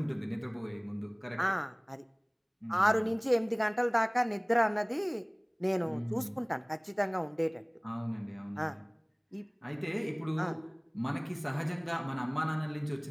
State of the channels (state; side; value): identical; both; correlation 1.00